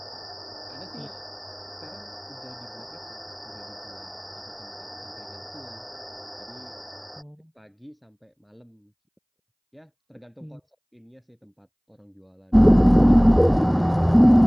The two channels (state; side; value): identical; both; correlation 1.00